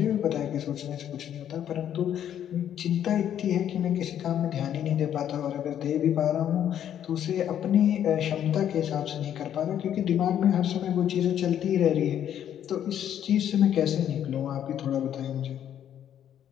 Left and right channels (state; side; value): quieter; right; 10.1 dB